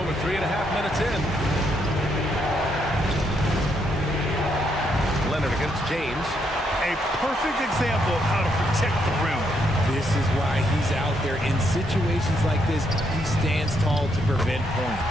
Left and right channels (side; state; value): both; normal; correlation 0.76